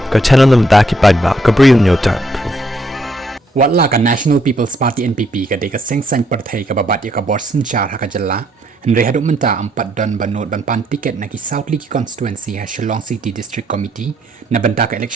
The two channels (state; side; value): normal; both; correlation 0.72